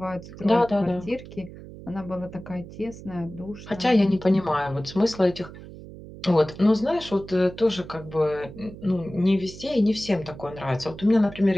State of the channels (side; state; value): right; noise; hum, 15 dB below the sound